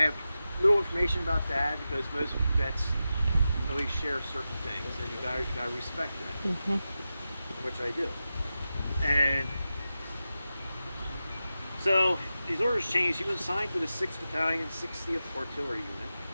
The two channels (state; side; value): inverted; both; correlation -0.92